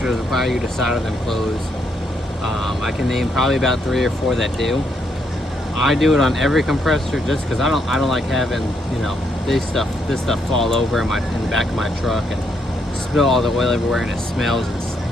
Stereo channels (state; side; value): normal; both; correlation 0.75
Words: require you to solder them closed. I can name probably about 3 or 4 that do. I do it on every compressor just because I don't like having, you know, this stuff fall over in the back of my truck and spill all the oil everywhere, and it smells.